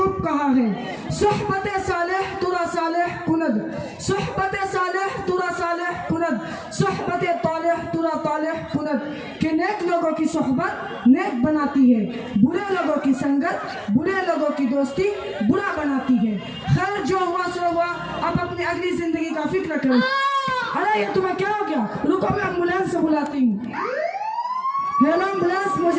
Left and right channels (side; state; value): both; identical; correlation 1.00